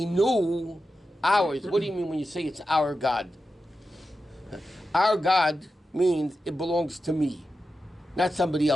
ours. What do you mean when you say it's our God? Our God means it belongs to me, not somebody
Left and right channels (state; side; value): normal; both; correlation 0.91